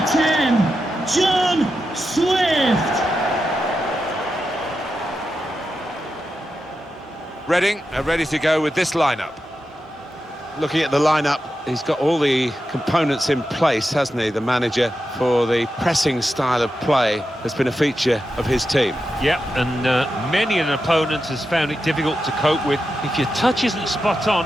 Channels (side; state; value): both; normal; correlation 0.89